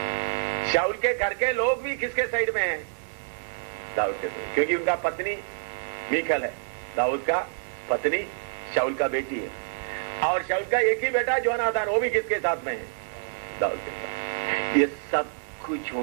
शाऊल के घर के लोग भी किसके साइड में हैं? दाऊद के साइड, क्योंकि उनका पत्नी मीकल है, दाऊद का पत्नी शाऊल का बेटी है, और शाऊल का एक ही बेटा जोनाथन, वो भी किसके साथ में है? दाऊद के साथ। ये सब कुछ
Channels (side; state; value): left; silent; digital silence